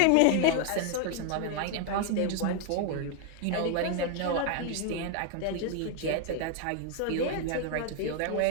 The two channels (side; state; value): both; different; correlation 0.00